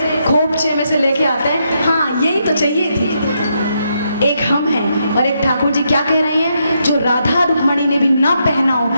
खोपचे में से लेके आते हैं, हाँ यही तो चाहिए थी। एक हम हैं और एक ठाकुर जी क्या कह रहे हैं, जो राधा रुक्मणी ने भी ना पहना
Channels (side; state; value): both; inverted; correlation -0.79